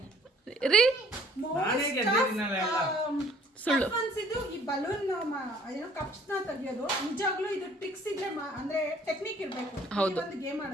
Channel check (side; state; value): both; normal; correlation 0.57